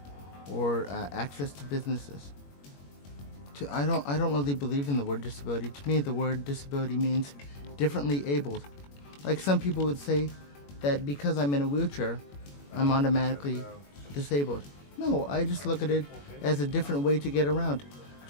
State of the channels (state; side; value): late; right; 21 ms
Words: or access to businesses. I don't really believe in the word disability. To me, the word disability means differently abled. Like some people would say that because I'm in a wheelchair, I'm automatically disabled. No, I just look at it as a different way to get around.